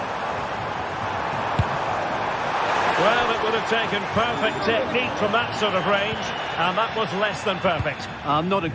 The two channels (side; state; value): both; identical; correlation 1.00